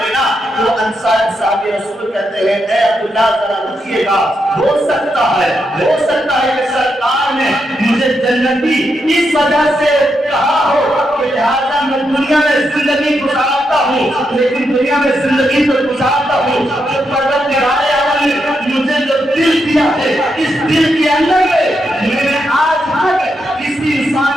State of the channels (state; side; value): normal; both; correlation 0.83